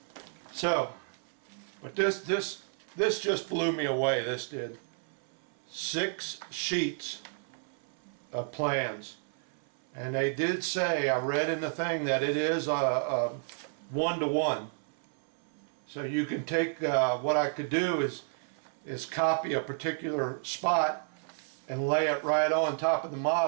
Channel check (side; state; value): left; silent; 57 dB below the other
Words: So, but this just blew me away. This did. 6 sheets of plans, and they did say, I read in the thing, that it is a 1-to-1. So you can take what I could do is copy a particular spot and lay it right on top of the